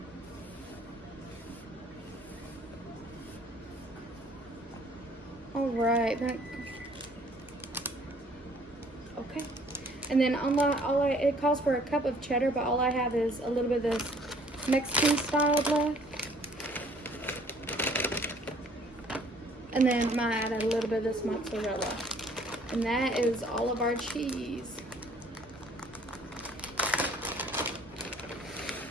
All right, okay. And then it calls for a cup of cheddar, but all I have is a little bit of this Mexican style left. And then I might add a little bit of this mozzarella. And that is all of our cheese.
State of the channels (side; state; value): both; normal; correlation 0.58